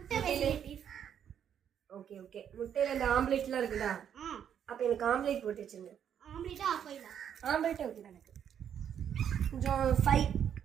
வெரைட்டிஸ். Okay okay. முட்டையில் இந்த ஆம்லேட்லாம் இருக்குதா? அப்போ எனக்கு ஆம்லேட் போட்டு வச்சுருங்க. ஆம்லேட்டா ஆஃபாயிலா? ஆம்லேட்டே ஓகே தான் எனக்கு. கொஞ்சம் ஃபைவ்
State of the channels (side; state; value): left; quieter; 8.9 dB